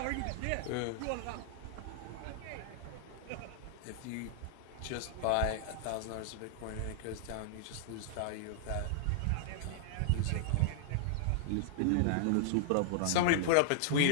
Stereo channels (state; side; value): different; both; correlation -0.01